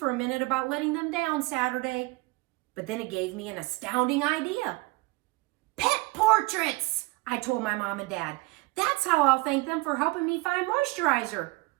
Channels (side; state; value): left; quieter; 23.7 dB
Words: a minute about letting them down Saturday. But then it gave me an astounding idea. "Pet portraits," I told my mom and dad. "That's how I'll thank them for helping me find moisturizer.